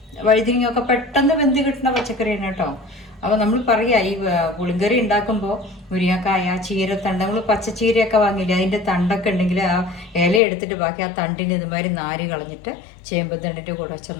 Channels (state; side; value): drops out; right; at 10.4 s